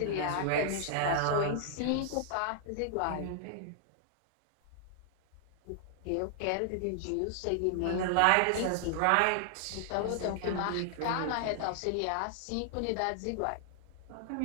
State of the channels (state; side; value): different; both; correlation 0.00